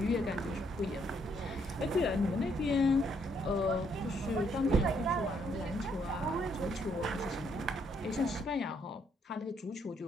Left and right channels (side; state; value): both; normal; correlation 0.71